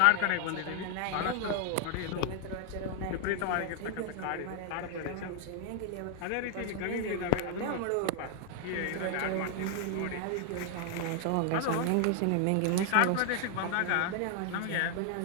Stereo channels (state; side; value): different; both; correlation 0.00